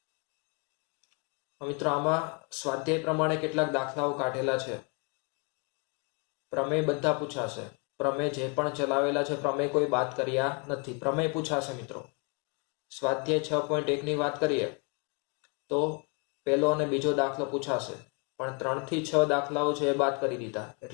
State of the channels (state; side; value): quieter; right; 35.1 dB